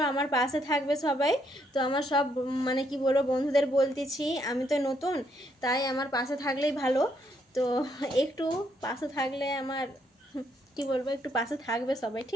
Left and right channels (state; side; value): normal; both; correlation 0.73